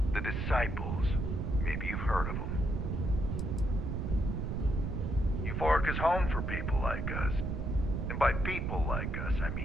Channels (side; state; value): right; noise; rumble, 1 dB below the sound